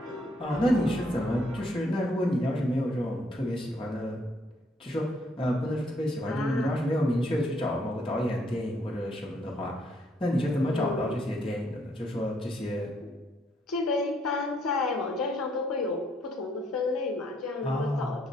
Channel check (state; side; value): normal; both; correlation 0.70